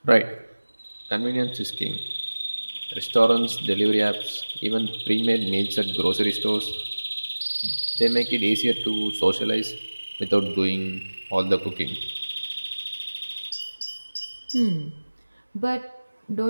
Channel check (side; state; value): both; inverted; correlation -1.00